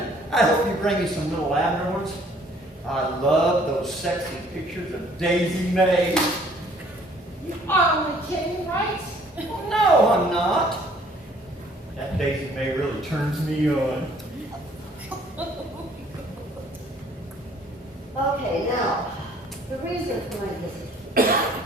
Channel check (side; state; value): both; normal; correlation 0.58